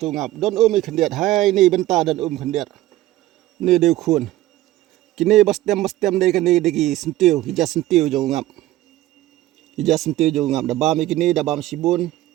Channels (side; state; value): left; quieter; 15.7 dB